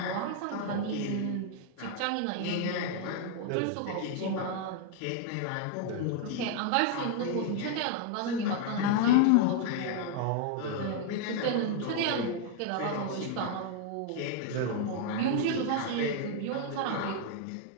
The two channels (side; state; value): both; different; correlation 0.00